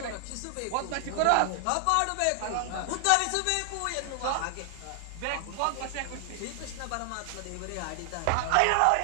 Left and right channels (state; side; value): different; both; correlation 0.00